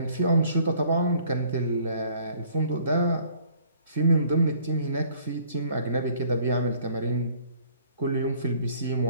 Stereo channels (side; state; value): both; inverted; correlation -0.57